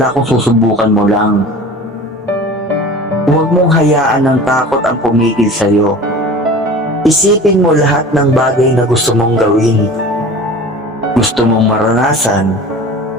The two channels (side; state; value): both; normal; correlation 0.39